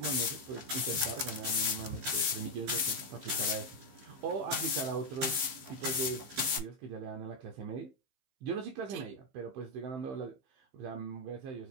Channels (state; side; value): late; left; 15 ms